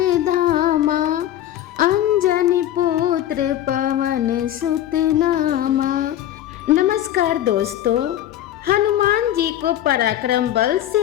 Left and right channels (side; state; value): right; quieter; 12.3 dB